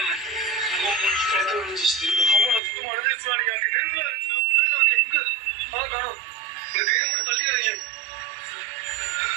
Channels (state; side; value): drops out; left; at 2.6 s